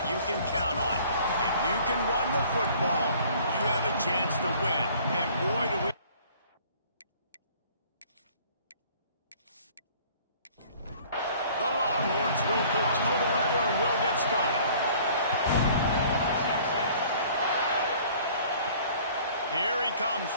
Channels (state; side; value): inverted; both; correlation -0.53